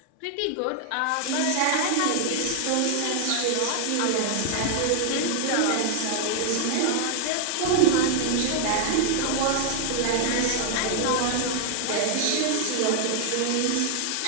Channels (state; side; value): different; both; correlation 0.00